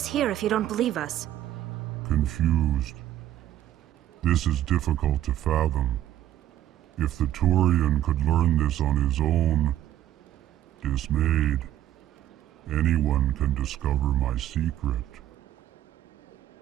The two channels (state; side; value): quieter; left; 12.3 dB